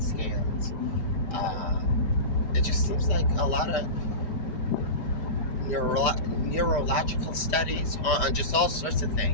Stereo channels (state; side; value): late; right; 4.9 ms